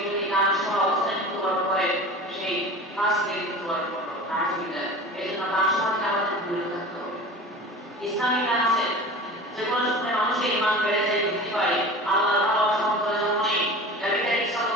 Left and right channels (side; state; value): both; normal; correlation 0.36